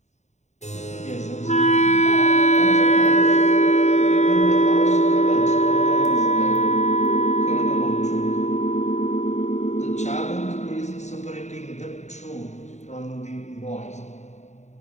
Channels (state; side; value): late; right; 0.34 ms